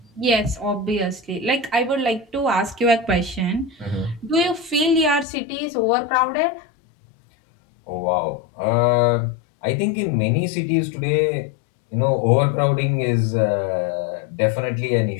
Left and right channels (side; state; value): right; drops out; at 5.2 s